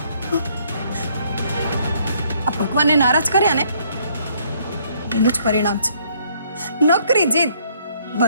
આ ભગવાનને નારાજ કર્યા ને એનું જ પરિણામ છે. નકરી જીદ.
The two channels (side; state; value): both; inverted; correlation -0.65